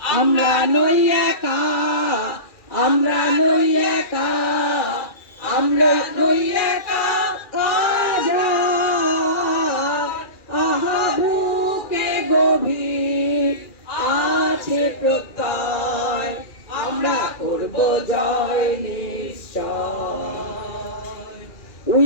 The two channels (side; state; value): right; late; 2.4 ms